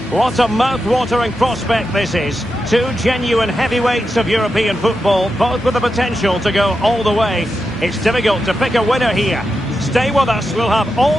What a mouth-watering prospect this is. Two genuine heavyweights of European football, both with the potential to go all the way. It's difficult to pick a winner here. Stay with us, we'll have all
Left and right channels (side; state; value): both; normal; correlation 0.88